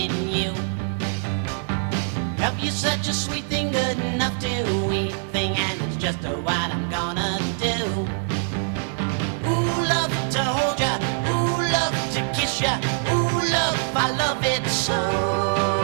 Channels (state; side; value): silent; left; digital silence